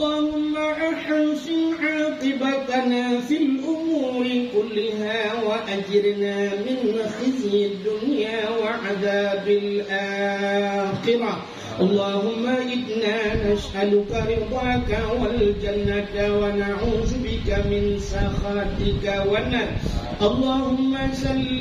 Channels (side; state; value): both; identical; correlation 1.00